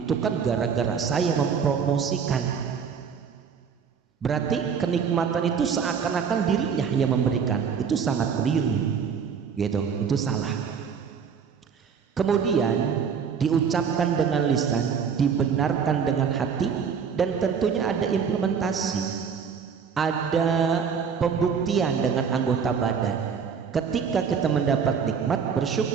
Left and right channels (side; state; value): left; quieter; 6.6 dB